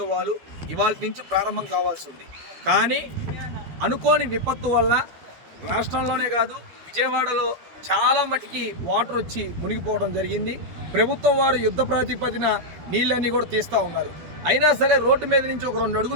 ఇవాళ నుంచి ప్రారంభం కావాల్సి ఉంది. కానీ అనుకోని విపత్తు వల్ల రాష్ట్రంలోనే కాదు విజయవాడలో చాలా మటుకి వాటర్ వచ్చి మునిగిపోవడం జరిగింది. ప్రభుత్వం వారు యుద్ధ ప్రాతిపదిన నీళ్ళన్నీ కూడా తీస్తూ ఉన్నారు. అయినా సరే రోడ్డు మీద నుంచి ఒక 2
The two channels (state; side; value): late; left; 13 ms